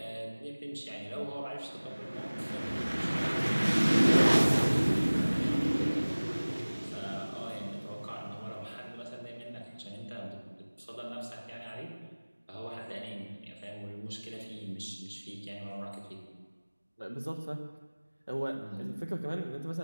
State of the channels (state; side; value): inverted; both; correlation -1.00